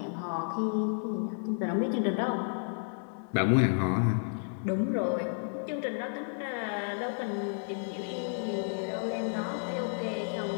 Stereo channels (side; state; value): right; silent; 57 dB below the other